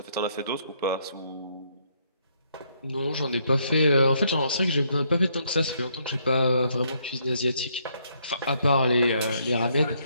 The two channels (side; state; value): both; inverted; correlation -0.72